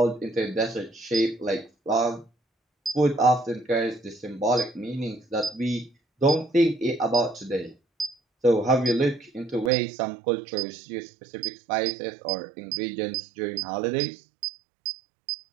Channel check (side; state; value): left; drops out; at 9.7 s